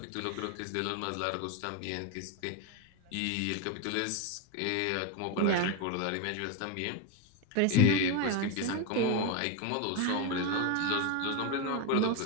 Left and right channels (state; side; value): different; both; correlation 0.02